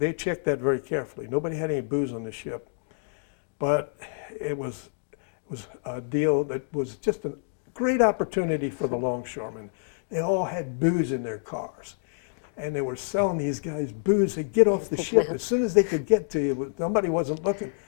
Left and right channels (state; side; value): silent; right; digital silence